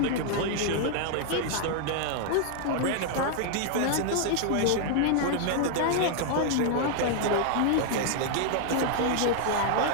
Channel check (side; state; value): both; different; correlation 0.00